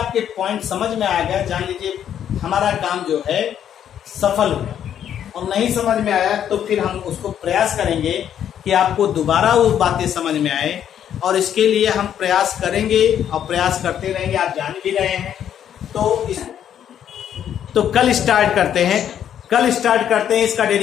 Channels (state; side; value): quieter; right; 9.7 dB